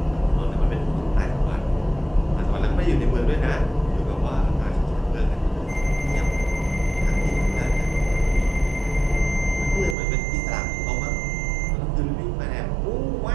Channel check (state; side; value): drops out; left; at 10.0 s